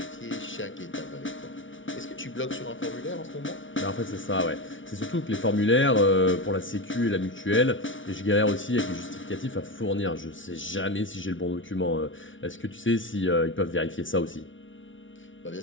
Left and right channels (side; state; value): right; late; 0.56 ms